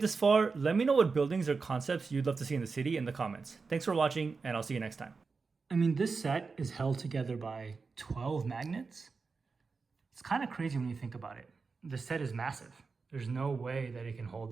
this far, let me know what buildings or concepts you'd love to see in the city in the comments. Thanks for watching, and I'll see you next time. I mean, this set is held together by 12 magnets. It's kind of crazy when you think about it. The set is massive. There's no way that it can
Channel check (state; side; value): quieter; left; 4.6 dB